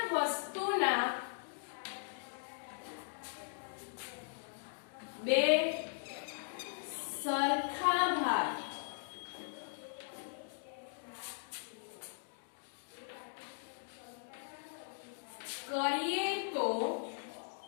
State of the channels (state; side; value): silent; right; digital silence